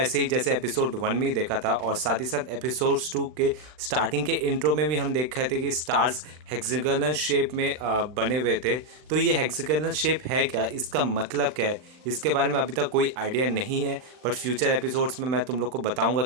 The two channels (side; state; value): left; late; 39 ms